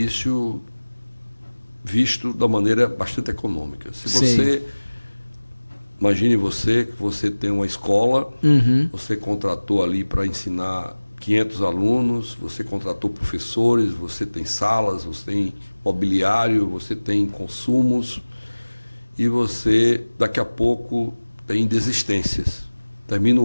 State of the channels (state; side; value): inverted; both; correlation -1.00